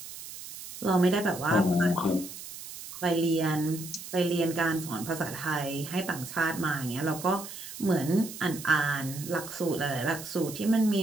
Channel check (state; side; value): noise; right; hiss, 12 dB below the sound